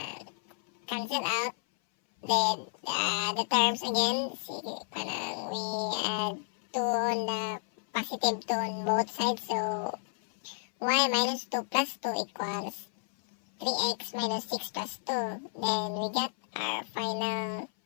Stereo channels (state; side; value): silent; right; 57 dB below the other